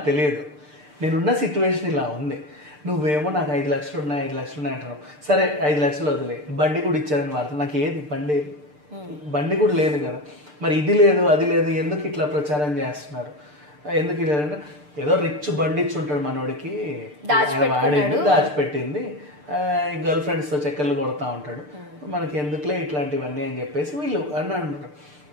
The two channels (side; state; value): left; late; 6.7 ms